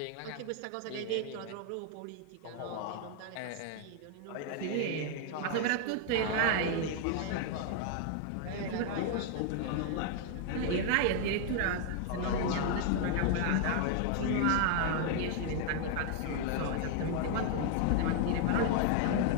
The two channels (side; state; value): both; different; correlation 0.00